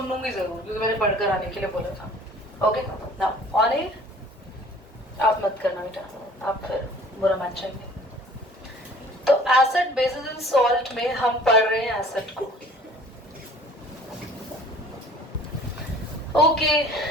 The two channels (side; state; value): both; normal; correlation 0.50